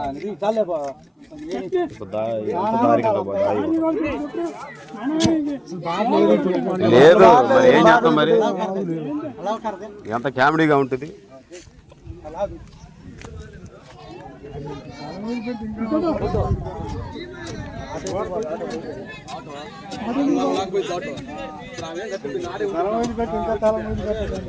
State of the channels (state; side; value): identical; both; correlation 1.00